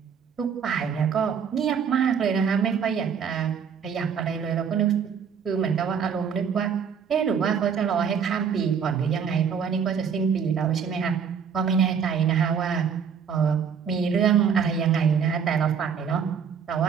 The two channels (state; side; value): quieter; left; 7.0 dB